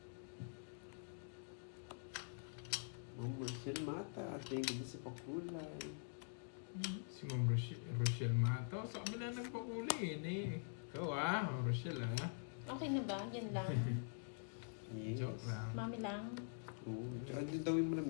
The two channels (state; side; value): silent; right; digital silence